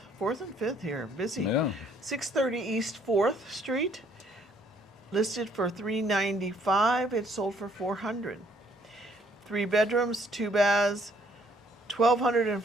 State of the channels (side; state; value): both; normal; correlation 0.64